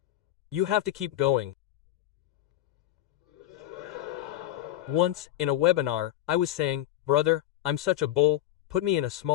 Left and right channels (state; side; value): quieter; right; 14.0 dB